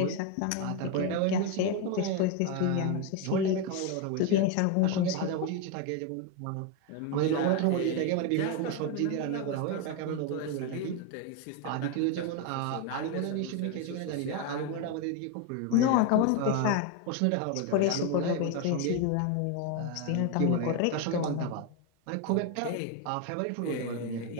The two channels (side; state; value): both; different; correlation 0.02